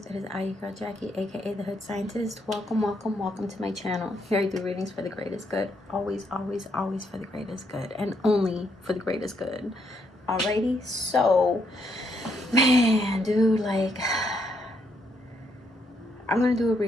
It is I, your girl Jackie, aka the Hood Scientist. Welcome, welcome, welcome to my channel. Here I do readings for the greatest good. Always, always, always for the greatest good, and only for the greatest good. Alrighty, so man, dude, like, I'm gonna do a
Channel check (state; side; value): normal; both; correlation 0.74